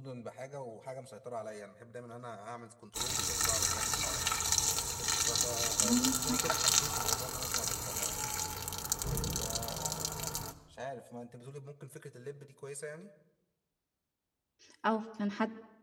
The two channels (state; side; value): identical; both; correlation 1.00